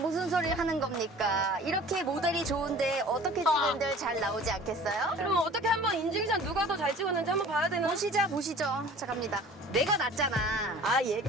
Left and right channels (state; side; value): normal; both; correlation 0.46